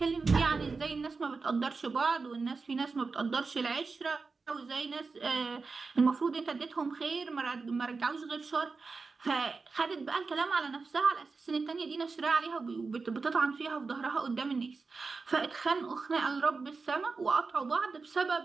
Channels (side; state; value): left; quieter; 4.3 dB